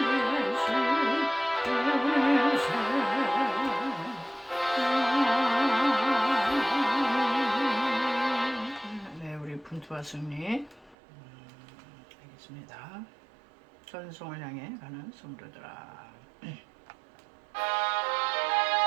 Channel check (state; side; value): drops out; left; at 11.0 s